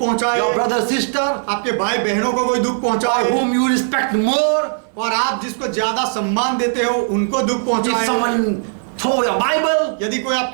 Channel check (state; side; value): silent; left; 64 dB below the other